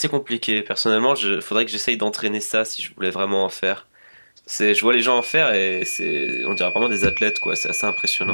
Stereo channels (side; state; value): both; inverted; correlation -1.00